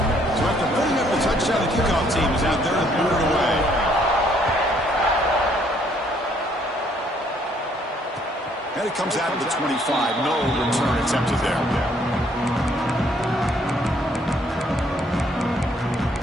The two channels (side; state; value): both; normal; correlation 0.66